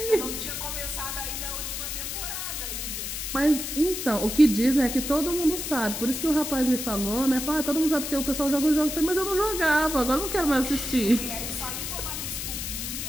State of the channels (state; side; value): noise; left; hiss, 5 dB below the sound